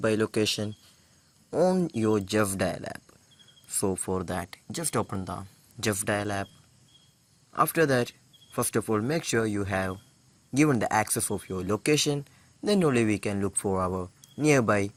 location on your Justdial app. So for that, just open the Justdial app. After that, first of all make sure you have given the access of your location, then only we can look for our nearby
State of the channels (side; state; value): both; identical; correlation 1.00